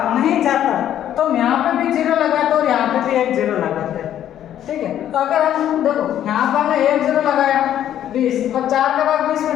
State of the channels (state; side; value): quieter; right; 11.0 dB